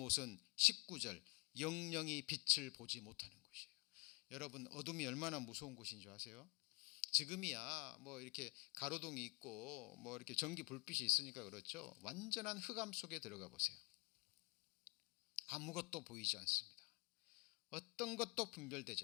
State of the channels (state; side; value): quieter; right; 27.8 dB